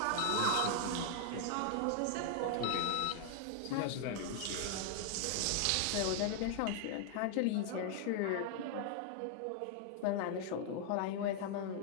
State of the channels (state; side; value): different; both; correlation 0.00